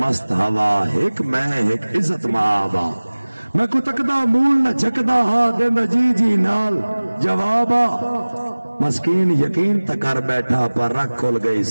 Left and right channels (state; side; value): inverted; both; correlation -1.00